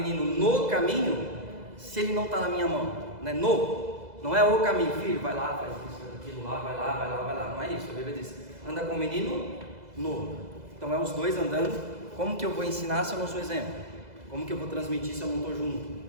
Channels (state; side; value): late; left; 2.0 ms